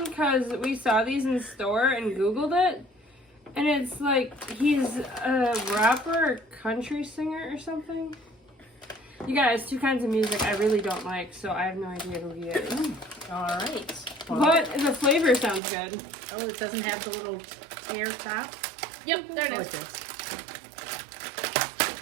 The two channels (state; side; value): drops out; left; at 15.6 s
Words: because we saw these in the store and Googled it. And it's like he's a rapper or country singer or something. You guys, two kinds of music I really don't like, so I have no idea who he is. All right. But the flavor sounds good. Oh, it doesn't have the little tear top? Yep, there Oh, it it is. does.